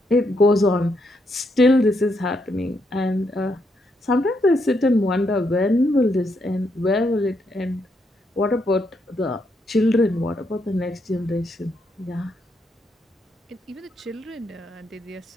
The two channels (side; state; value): both; normal; correlation 0.78